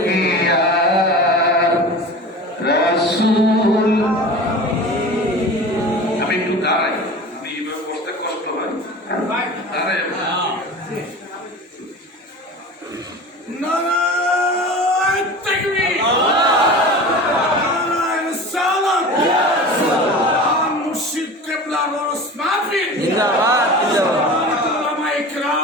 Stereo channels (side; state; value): both; normal; correlation 0.35